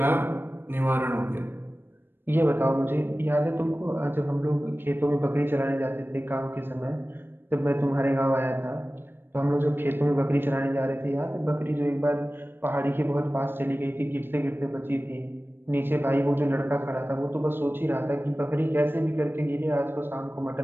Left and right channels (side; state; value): left; late; 0.10 ms